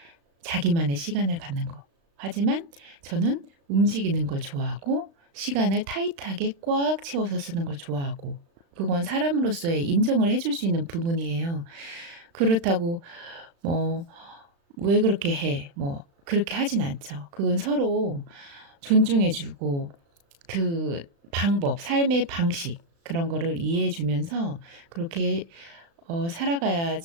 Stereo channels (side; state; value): left; late; 36 ms